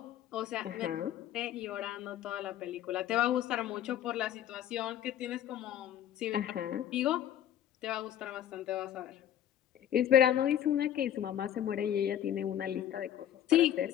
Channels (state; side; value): quieter; right; 10.9 dB